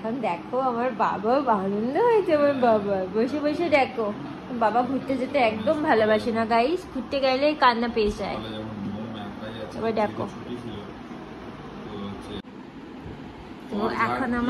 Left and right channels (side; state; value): both; identical; correlation 1.00